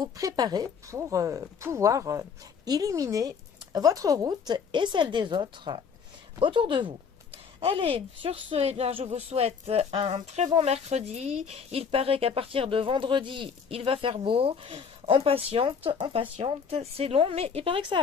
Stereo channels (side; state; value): right; quieter; 6.3 dB